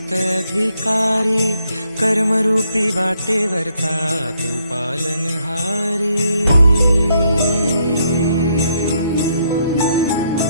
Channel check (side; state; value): both; inverted; correlation -0.73